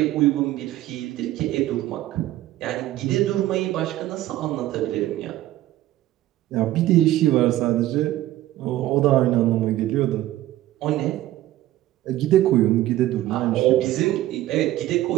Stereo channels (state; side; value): quieter; left; 14.9 dB